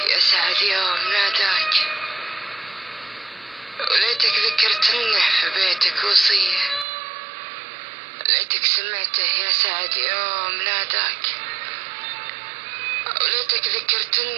سعد يوم ناداك، وليتك ذكرتنه في بيتك وصية، ليتك سمعته يا سعد يوم ناداك، وليتك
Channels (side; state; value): left; drops out; at 6.9 s